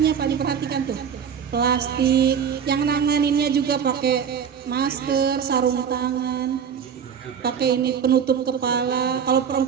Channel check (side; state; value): left; quieter; 7.6 dB